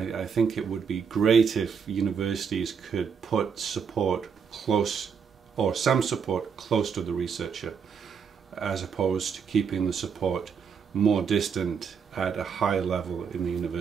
I think it would be great if universities could put support close, or some support close to the researcher, as opposed to keeping the support more distant at a high level in the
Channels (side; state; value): left; quieter; 6.5 dB